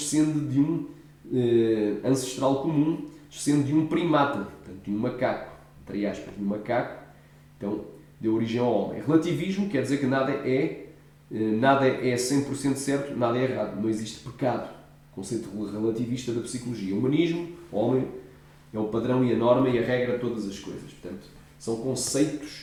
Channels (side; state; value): both; identical; correlation 1.00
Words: de um ancestral comum, descende de um primata, portanto, de um macaco, entre aspas, de um macaco, então deu origem ao homem. Relativismo quer dizer que nada é 100% certo, nada é errado, não existe pecado, conceito relativista da psicologia. O humanismo, o homem é o padrão e a norma e a regra de todas as coisas, portanto, são